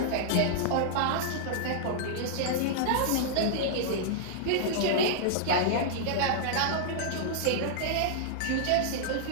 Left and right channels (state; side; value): different; both; correlation -0.01